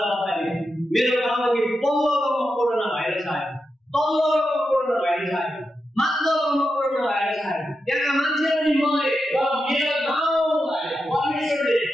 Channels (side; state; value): both; normal; correlation 0.88